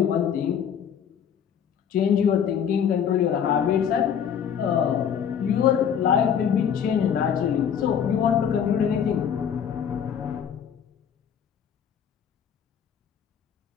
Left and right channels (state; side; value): quieter; right; 8.2 dB